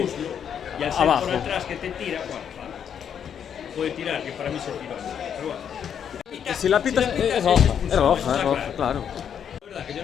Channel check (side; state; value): right; quieter; 8.3 dB